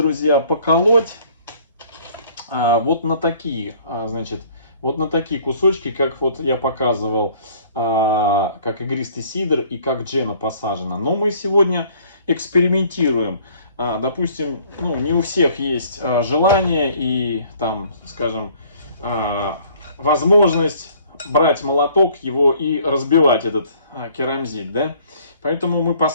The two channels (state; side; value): inverted; both; correlation -0.57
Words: поколоть вот на такие, значит, вот на такие кусочки, как вот я показывал, как игристый сидр и как джена посажена. Но мы сегодня экспериментируем. Допустим, ну, не у всех есть желание и, там, скажем, возможность брать молоток его и разбивать этот керамзит, да? Поэтому мы